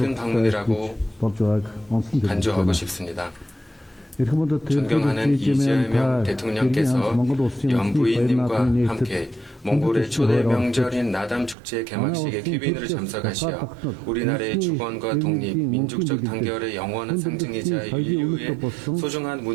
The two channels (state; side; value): drops out; left; at 11.6 s